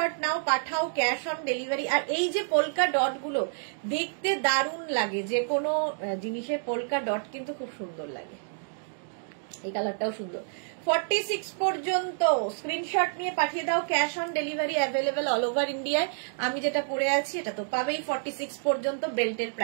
নাও, পাঠাও, ক্যাশ অন ডেলিভারি। আর এই যে পোলকা ডট গুলো দেখতে দারুণ লাগে, যে কোনো জিনিসের পোলকা ডট কিন্তু খুব সুন্দর লাগে। এই কালারটাও সুন্দর। 46 পর্যন্ত স্ক্রিনশট নিয়ে পাঠিয়ে দাও, cash on delivery available all over ইন্ডিয়ায়। আমি যেটা পরে আছি এটা তো পাবেই 46 পর্যন্ত। বেল্টের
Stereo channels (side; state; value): left; silent; digital silence